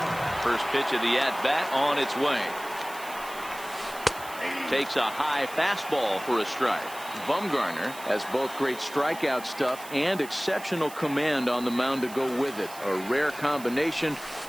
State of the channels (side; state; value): right; noise; hiss, 16 dB below the sound